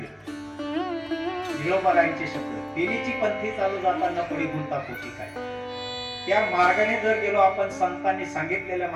जिळोबारायांचे शब्द, तेनीची पंथी चालू जाताना पडी गुंता पोटी काय. त्या मार्गाने जर गेलो आपण, संतांनी सांगितलेल्या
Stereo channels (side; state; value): both; identical; correlation 1.00